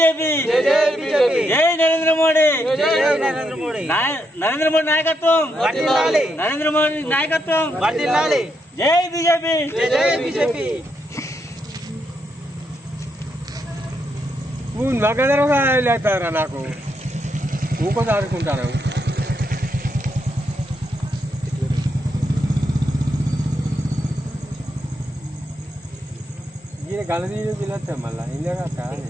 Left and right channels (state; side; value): normal; both; correlation 0.80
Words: జై నరేంద్ర మోడీ, నరేంద్ర మోడీ నాయకత్వం, నరేంద్ర మోడీ నాయకత్వం, జై బీజేపీ, జై బీజేపీ. నగదరగా లేతారా నాకు ఊకొంత ఆడుకుంటాను. ఈయన గలదీలు తినొచ్చా మళ్ళీ ఇందాక